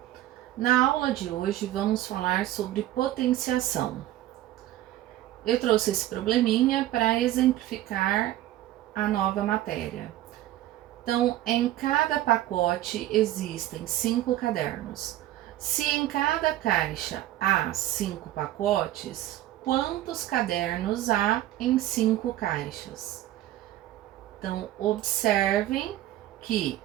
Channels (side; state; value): left; quieter; 14.2 dB